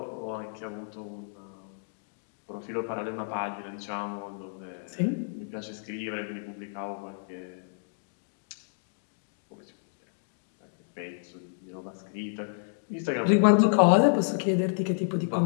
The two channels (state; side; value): silent; right; digital silence